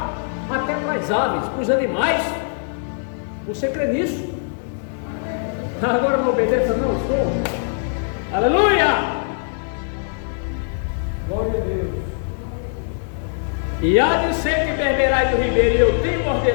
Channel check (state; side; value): silent; right; digital silence